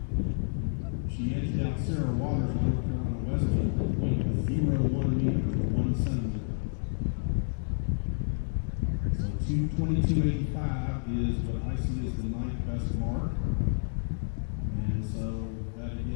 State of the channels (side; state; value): right; silent; digital silence